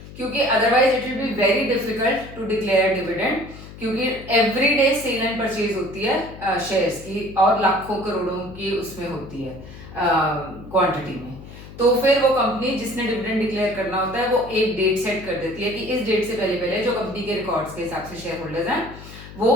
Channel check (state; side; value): noise; left; hum, 16 dB below the sound